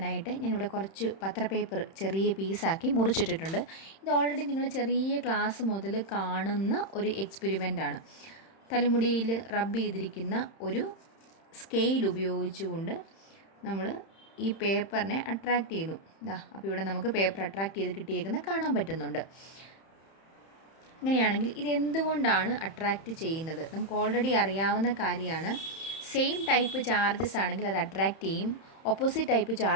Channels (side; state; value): right; late; 31 ms